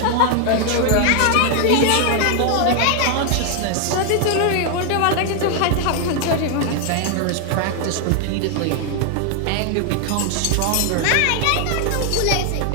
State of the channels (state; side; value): different; both; correlation 0.00